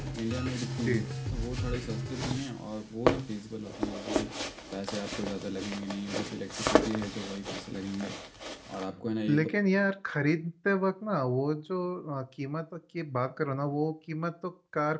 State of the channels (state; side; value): identical; both; correlation 1.00